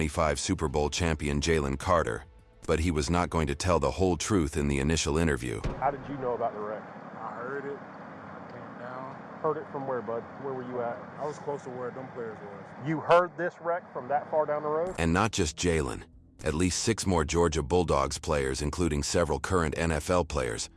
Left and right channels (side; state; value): both; identical; correlation 1.00